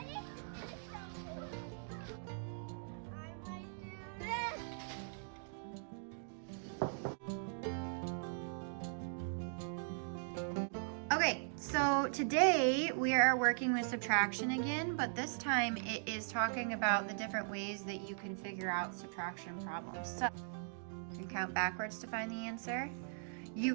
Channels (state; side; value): silent; left; digital silence